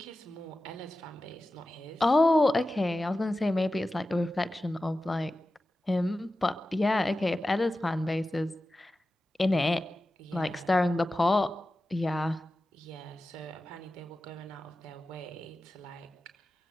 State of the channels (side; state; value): both; normal; correlation 0.94